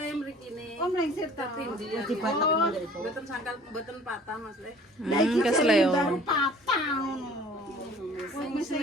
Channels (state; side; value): normal; both; correlation 0.50